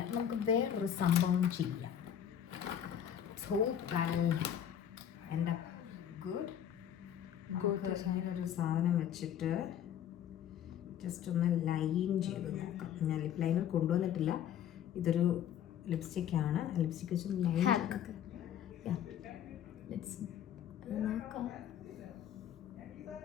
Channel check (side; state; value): right; quieter; 9.7 dB